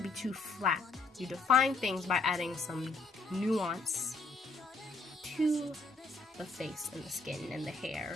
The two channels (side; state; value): right; quieter; 3.7 dB